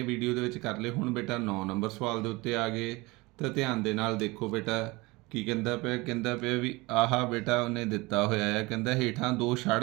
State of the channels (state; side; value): quieter; left; 23.3 dB